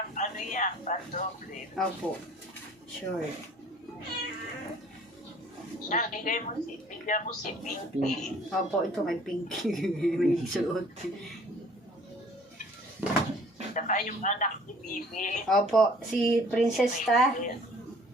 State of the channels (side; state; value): both; normal; correlation 0.53